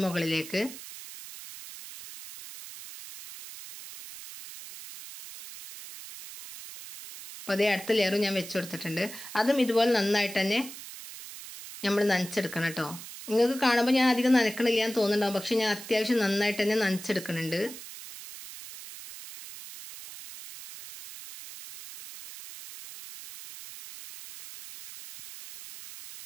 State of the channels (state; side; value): noise; right; hiss, 13 dB below the sound